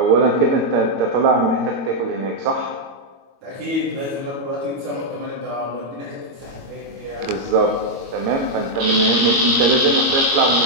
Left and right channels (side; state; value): left; late; 22 ms